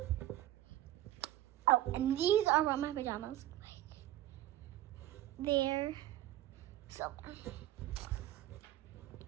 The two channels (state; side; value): quieter; left; 14.2 dB